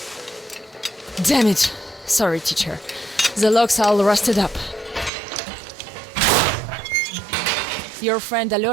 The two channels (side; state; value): left; drops out; at 5.1 s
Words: Damn it. Sorry, teacher. The logs all rusted up. Your friend